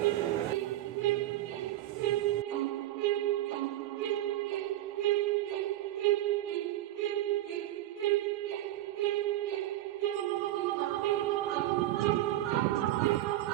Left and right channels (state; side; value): quieter; left; 14.4 dB